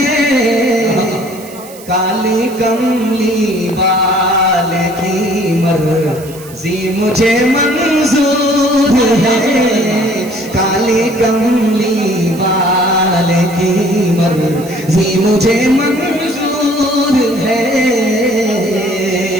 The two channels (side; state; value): right; noise; hiss, 19 dB below the sound